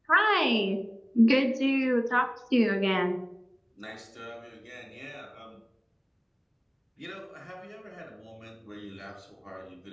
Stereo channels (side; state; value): both; identical; correlation 1.00